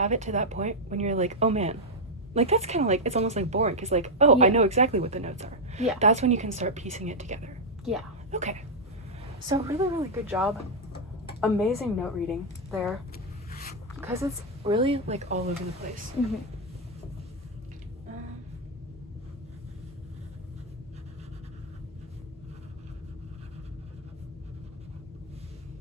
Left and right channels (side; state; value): both; normal; correlation -0.02